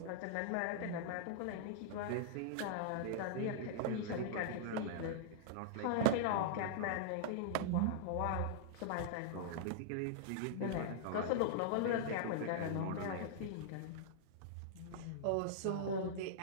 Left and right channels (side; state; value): both; different; correlation -0.01